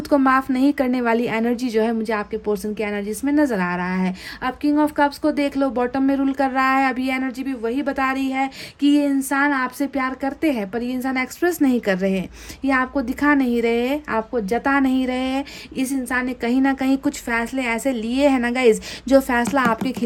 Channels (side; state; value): both; identical; correlation 1.00